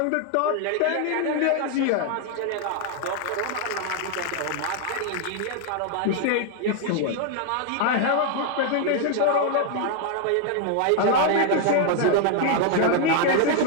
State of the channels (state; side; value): different; both; correlation 0.00